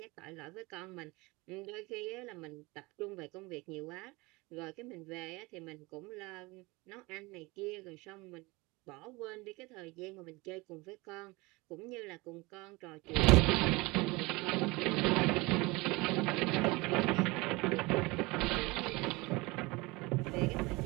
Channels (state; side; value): quieter; left; 23.9 dB